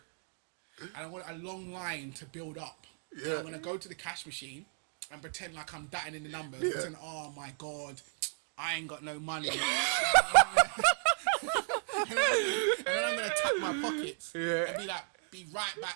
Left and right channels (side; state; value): left; silent; 55 dB below the other